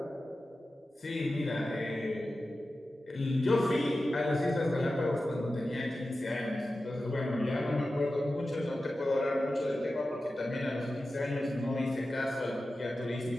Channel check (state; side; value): normal; both; correlation 0.93